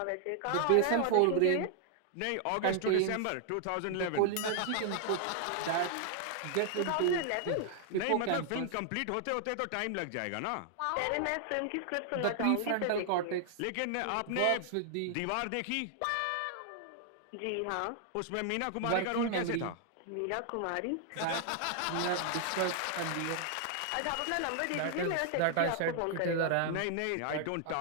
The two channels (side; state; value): both; different; correlation 0.00